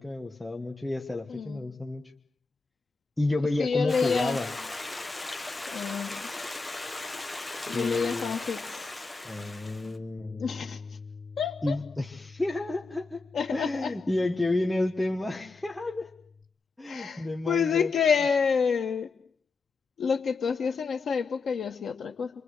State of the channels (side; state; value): right; quieter; 4.0 dB